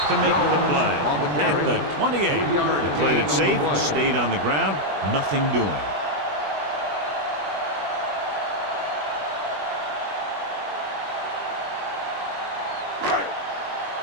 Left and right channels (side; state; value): left; late; 20 ms